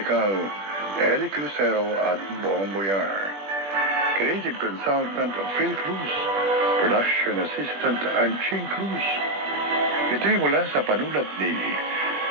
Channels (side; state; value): left; late; 20 ms